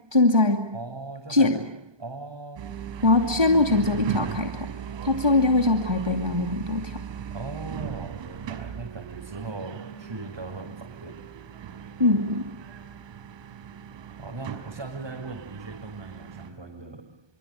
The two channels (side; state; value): left; late; 1.2 ms